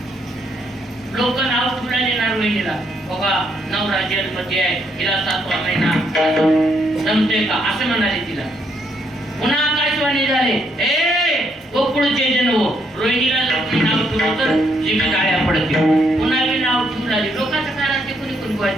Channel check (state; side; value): normal; both; correlation 0.74